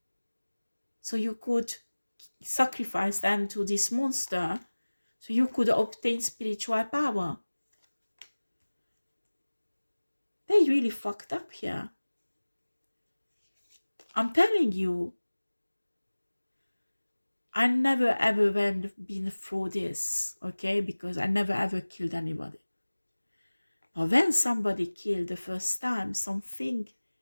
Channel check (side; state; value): both; inverted; correlation -1.00